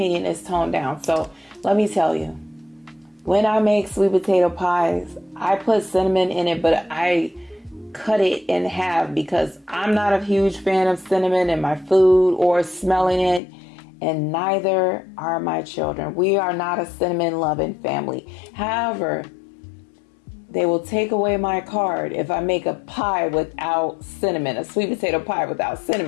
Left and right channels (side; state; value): right; drops out; at 13.4 s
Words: it's toned down. So let me tell you, when I make sweet potato pies, I put cinnamon in it, but I cut it in half because I'm not a huge fan of cinnamon in my food or smelling it, and neither are my children. We are not a cinnamon loving family. However, they will take away my card if I make a pie without cinnamon, a sweet potato pie without